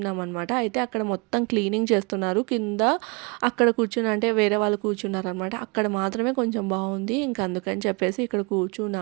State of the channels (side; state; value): left; quieter; 30.7 dB